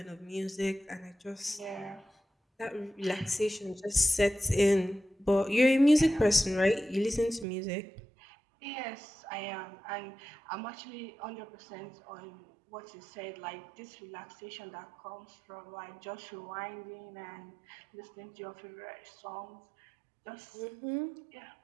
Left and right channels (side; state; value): left; drops out; at 7.5 s